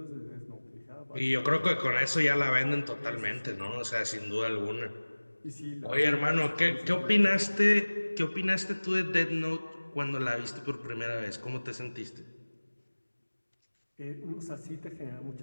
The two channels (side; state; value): both; inverted; correlation -1.00